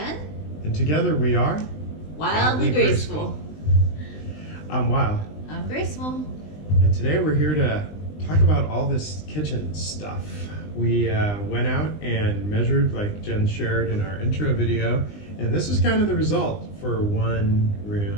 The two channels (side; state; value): right; late; 20 ms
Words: And together we are Wildly Graceful. I'm Wild. I'm Graceful. And today we're here to talk about all this kitchen stuff. We went out and measured, like Jen shared in our intro video, and this is kind of the result for one